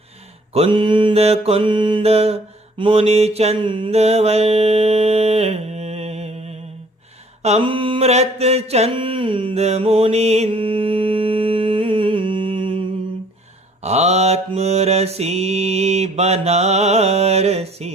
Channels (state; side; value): normal; both; correlation 0.57